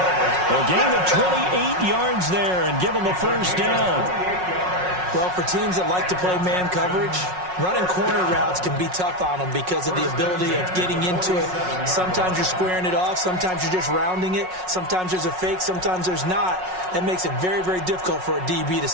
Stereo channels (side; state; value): left; late; 5.5 ms